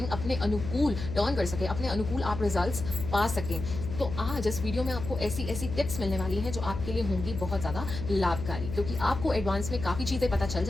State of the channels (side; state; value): left; noise; hum, 7 dB below the sound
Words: अपने अनुकूल टर्न कर सके, अपने अनुकूल आप रिजल्ट्स पा सकें। तो आज इस वीडियो में आपको ऐसी ऐसी टिप्स मिलने वाली हैं जो आपके लिए होंगी बहुत ज़्यादा लाभकारी, क्योंकि आपको एडवांस में काफ़ी चीज़ें पता चल